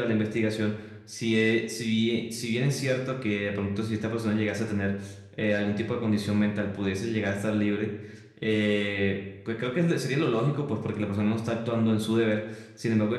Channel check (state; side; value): identical; both; correlation 1.00